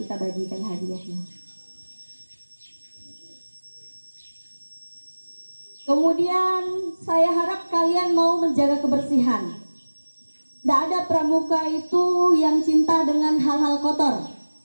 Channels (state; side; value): inverted; both; correlation -1.00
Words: bagikan hadiahnya. Kemudian saya harap kalian mau menjaga kebersihan. Tidak ada pramuka itu yang cinta dengan hal-hal kotor.